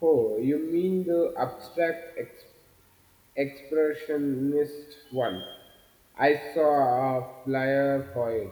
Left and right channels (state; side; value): identical; both; correlation 1.00